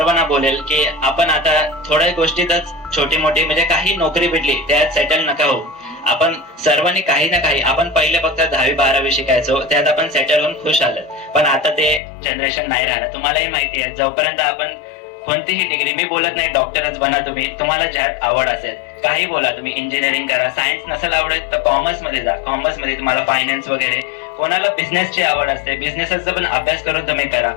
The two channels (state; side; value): drops out; right; at 12.0 s